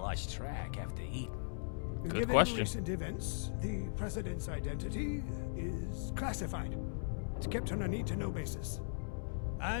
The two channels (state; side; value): silent; right; digital silence